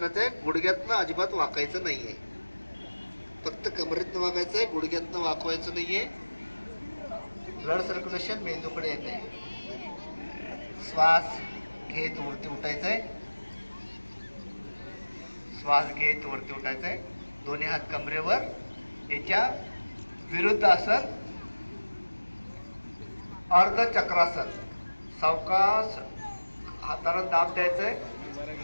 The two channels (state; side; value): inverted; both; correlation -1.00